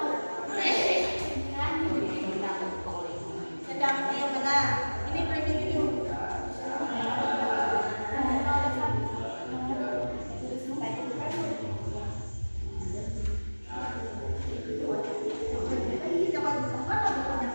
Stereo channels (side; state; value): both; inverted; correlation -1.00